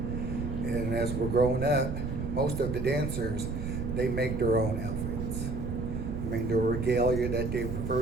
as we're growing up, most of the dancers, they make their own outfits. I mean, their regalia that they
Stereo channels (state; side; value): noise; right; rumble, 4 dB below the sound